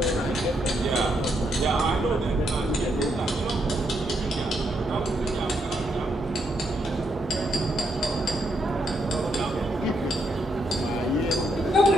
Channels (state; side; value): normal; both; correlation 0.78